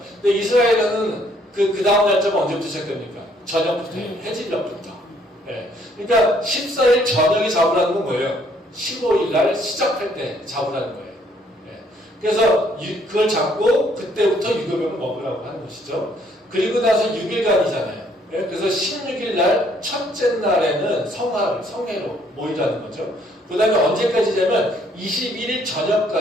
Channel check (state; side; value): normal; both; correlation 0.66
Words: 근데 이스라엘은 그 다음 날짜가 언제부터 시작됩니까? 저녁부터 해요. 해질녘부터. 그러니까 14일 저녁이 잡으라는 건 뭐예요? 15일 날 시작할 때 잡으라는 거예요. 그래서 그걸 잡고 그때부터 유교병을 먹으라고 하는 것이죠. 그리고 나서 6일간이잖아요. 그래서 16일 날 첫째 날에는 성회로 모이라는 거죠. 그 다음에 언제까지냐면 21일